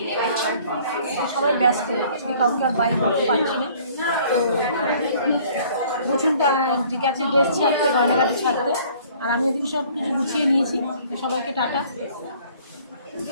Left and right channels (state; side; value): inverted; both; correlation -0.55